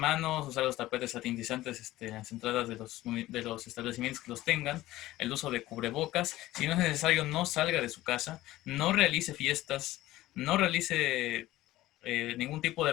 usar los tapetes satinizantes en las entradas de los establecimientos que los tengan, el uso de cubrebocas. Si no es necesario, no salga de su casa, no realice fiestas, no realice ningún tipo de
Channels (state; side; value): quieter; right; 16.4 dB